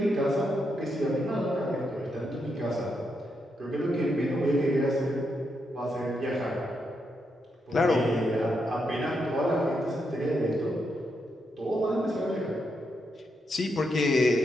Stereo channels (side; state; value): both; normal; correlation 0.82